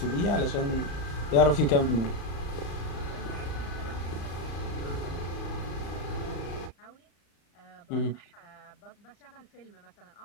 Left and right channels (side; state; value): right; late; 35 ms